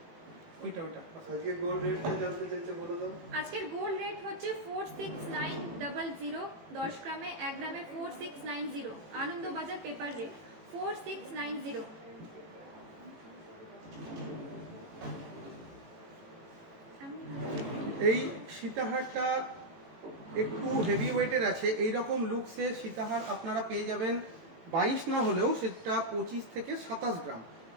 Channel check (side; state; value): left; late; 18 ms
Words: ওইটা আজকে গোল্ড রেটটা জানতে চাইছে, বলে দাও। আজকের গোল্ড রেট হচ্ছে 46900, 10 গ্রামে 1 গ্রামে 4690, আনন্দবাজার পেপার রেট 4690। এই সীতাহারটা একটু হেভি ওয়েটের আছে। এই রকম লুকসে সীতাহার আপনারা পেয়ে যাবেন 22 না হলেও সেটা 25 থেকে 27 গ্রাম।